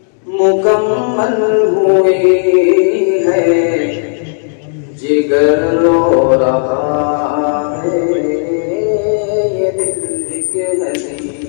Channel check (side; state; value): right; silent; digital silence